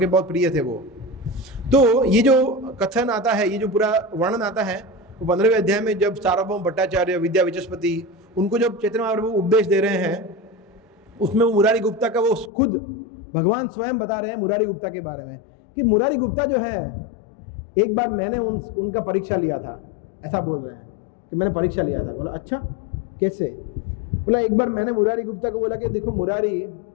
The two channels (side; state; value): right; drops out; at 12.5 s